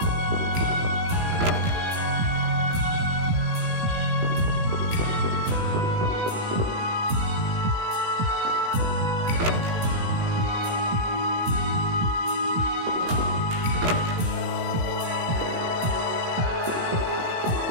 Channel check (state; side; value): late; left; 18 ms